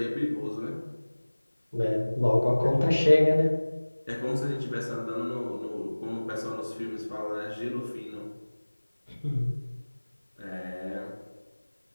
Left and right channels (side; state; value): both; inverted; correlation -1.00